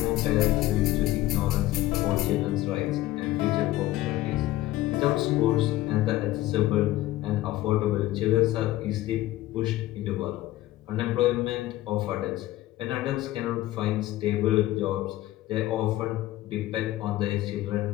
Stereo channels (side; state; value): right; quieter; 15.8 dB